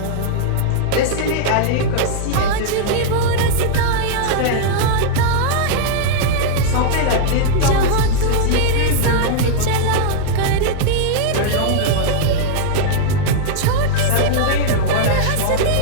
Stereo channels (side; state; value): both; different; correlation -0.01